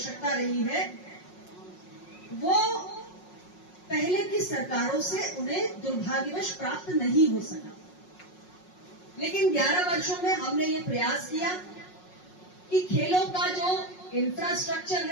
रही है, वो पहले की सरकारों से उन्हें दुर्भाग्यवश प्राप्त नहीं हो सका। लेकिन 11 वर्षों में हमने ये प्रयास किया कि खेलों का जो इंफ्रास्ट्रक्चर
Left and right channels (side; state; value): right; late; 5.5 ms